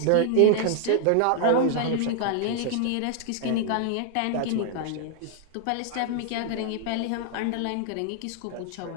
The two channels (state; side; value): different; both; correlation 0.00